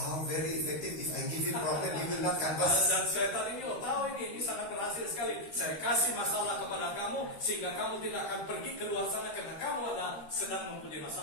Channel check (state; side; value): late; right; 13 ms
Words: very effective. If I give you problem, you will not canvass. Dan setan ini, tahu ini sangat berhasil sekali. Saya kasih masalah kepada kamu, sehingga kamu tidak akan pergi keluar sana karena kamu sedang mempunyai